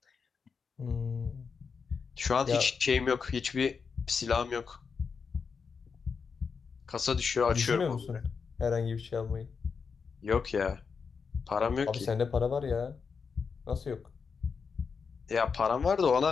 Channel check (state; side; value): quieter; right; 5.6 dB